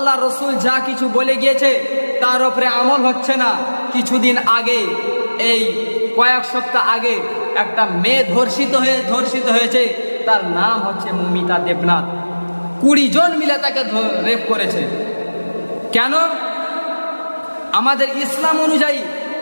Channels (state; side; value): inverted; both; correlation -1.00